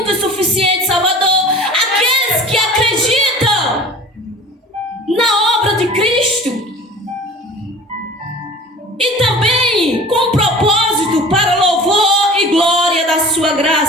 e suficiente Salvador. Aqueles que acreditam na obra de Cristo. E também com propósito para louvor e glória da sua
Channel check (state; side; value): normal; both; correlation 0.42